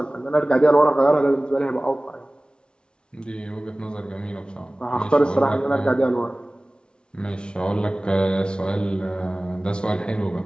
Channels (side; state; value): right; late; 0.055 ms